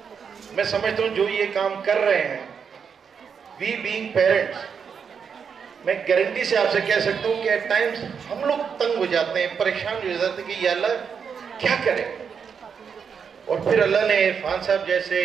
میں سمجھتا ہوں جو یہ کام کر رہے ہیں، وی بینگ پیرنٹس، میں گارنٹی سے آپ سے کہہ سکتا ہوں کہ ایٹ ٹائمز ہم لوگ تنگ ہو جاتے ہیں، پریشان ہو جاتے ہیں کہ یا اللہ کیا کریں. اور پھر اللہ نے عرفان صاحب جیسے،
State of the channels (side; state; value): left; quieter; 6.6 dB